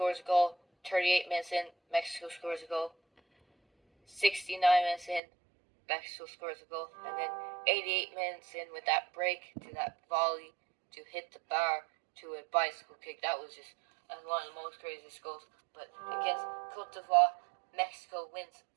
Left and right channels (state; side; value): drops out; left; at 5.2 s